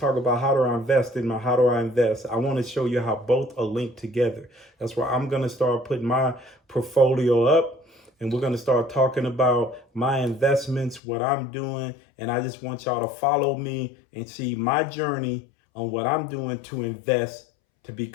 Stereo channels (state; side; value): drops out; right; at 11.0 s